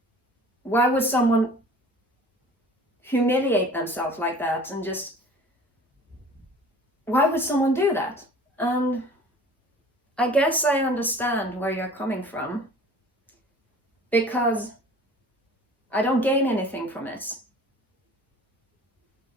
Why would someone humiliate themselves like that and just, why would someone do that? And I guess I understand where you're coming from, because I don't gain anything from it.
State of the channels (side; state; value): both; normal; correlation 0.45